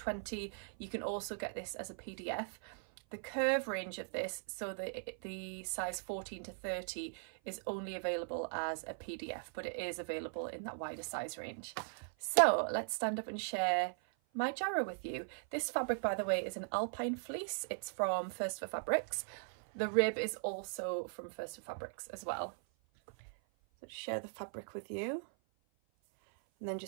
You can also get this as a PDF. The curve range of this, so the size 14 to 30, is only available as a PDF, but it is available in that wider size range. So let's stand up and share my Jarrah with you. This fabric, by the way, is an alpine fleece. It's from First for Fabrics. The rib is also from First for Fabrics as well. So to share the fabric with you, and then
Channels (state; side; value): silent; left; 52 dB below the other